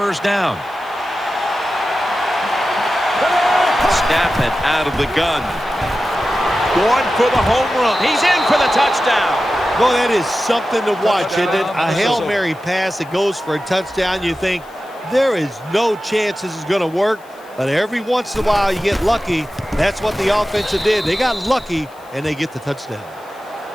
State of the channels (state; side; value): noise; left; hiss, 28 dB below the sound